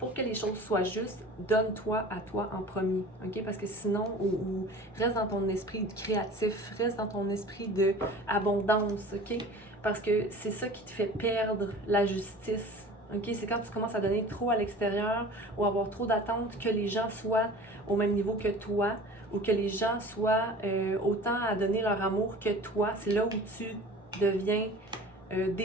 que les choses soient justes, donne-toi à toi en premier, OK? Parce que sinon, ou reste dans ton esprit créatif, reste dans ton esprit d'abondance, OK? Parce que c'est ça qui te fait perdre la justice, OK? C'est quand tu commences à donner trop à l'extérieur ou avoir trop d'attentes que les gens soient au même niveau que toi ou que les gens soient autant à donner leur amour que toi. C'est là où tu deviens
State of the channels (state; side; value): normal; both; correlation 0.41